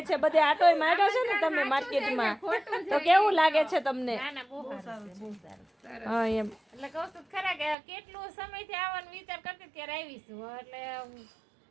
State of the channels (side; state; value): left; drops out; at 7.8 s